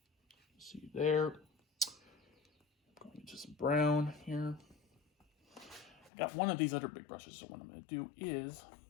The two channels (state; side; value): drops out; right; at 6.1 s